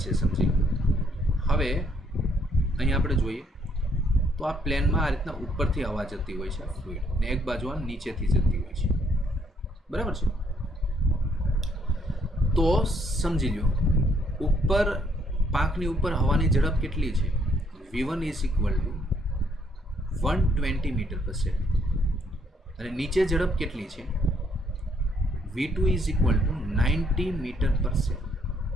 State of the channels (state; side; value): normal; both; correlation 0.69